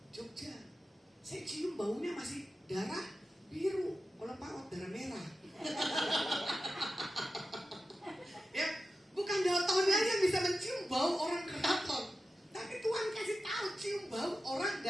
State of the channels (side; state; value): both; normal; correlation 0.92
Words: Jogja. Saya cium baunya masih darah biru, kalau paut darah merah. Ya, bukan daltonnya yang bisa mencium bau orang keraton, tapi Tuhan kasih tahu cium bau orang